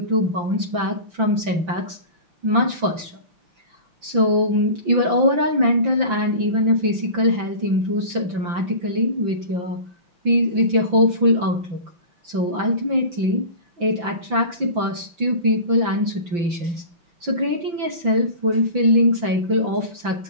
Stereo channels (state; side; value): late; left; 5.9 ms